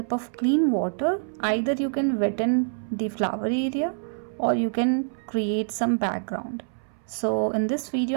of clean water, either you can wetten the flower area or you can create some background. So in this video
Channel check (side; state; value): left; silent; 61 dB below the other